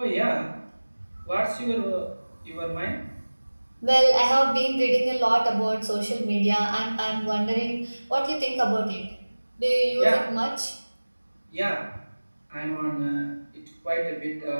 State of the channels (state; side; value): inverted; both; correlation -1.00